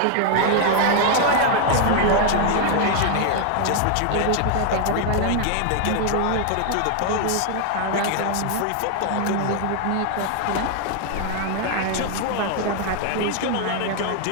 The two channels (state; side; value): different; both; correlation 0.00